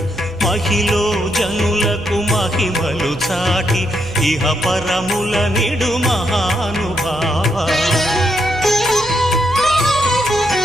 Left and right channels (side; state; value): right; noise; hum, 16 dB below the sound